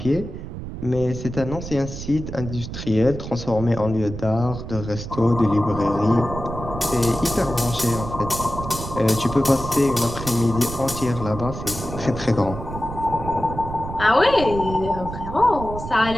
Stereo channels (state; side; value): noise; right; rumble, 9 dB below the sound